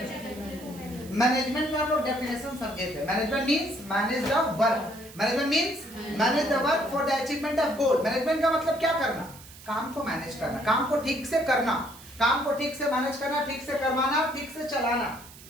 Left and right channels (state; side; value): noise; right; hiss, 19 dB below the sound